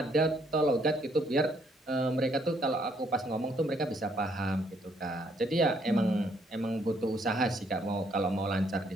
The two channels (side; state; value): both; normal; correlation 0.69